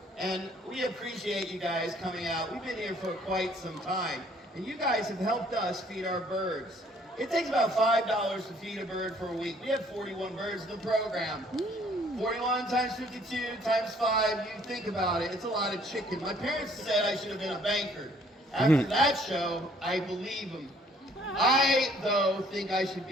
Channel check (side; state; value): both; normal; correlation 0.60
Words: and we appreciate you guys coming out. We've been here for quite some time, and you guys have helped us feed our birds. It takes about $5 to feed a bird for a week. We have 41 birds in the program. 41 times 52 times 5, you think about it, it's a lot of chicken. My parents said I should have been a banker. After that show, I believe them. I, though, think I should